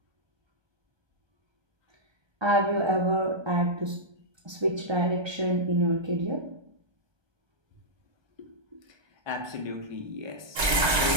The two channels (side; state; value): left; late; 1.3 ms